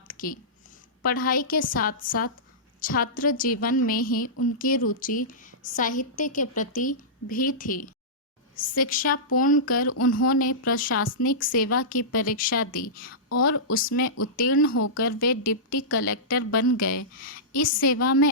की। पढ़ाई के साथ साथ छात्र जीवन में ही उनकी रुचि साहित्य के प्रति भी थी। शिक्षा पूर्ण कर उन्होंने प्रशासनिक सेवा की परीक्षा दी और उसमें उत्तीर्ण होकर वे डिप्टी कलेक्टर बन गए। इस सेवा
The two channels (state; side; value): normal; both; correlation -0.16